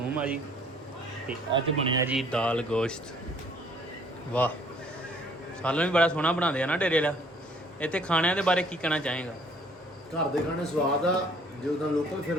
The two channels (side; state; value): both; normal; correlation 0.59